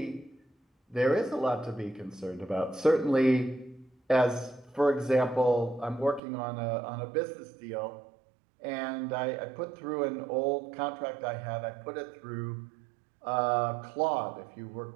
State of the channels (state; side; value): drops out; left; at 6.2 s